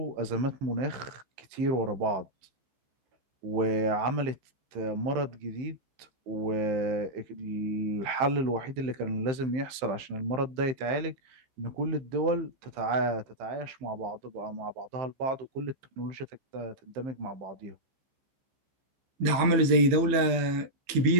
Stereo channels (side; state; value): left; late; 15 ms